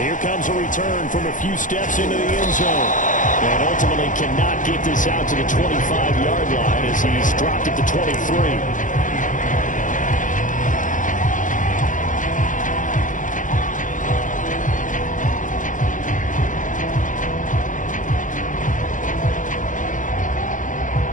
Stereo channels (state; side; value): late; right; 0.37 ms